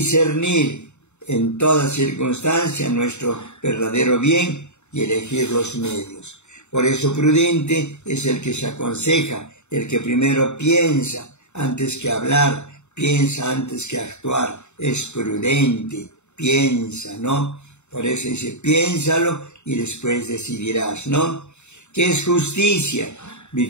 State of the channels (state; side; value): late; right; 0.82 ms